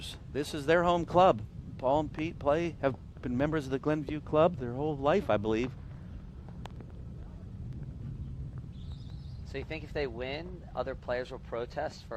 This is their home club. Paul and Pete have been members of the Glenview Club their whole life, I believe. So you think if they win, other players will protest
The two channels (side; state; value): both; identical; correlation 1.00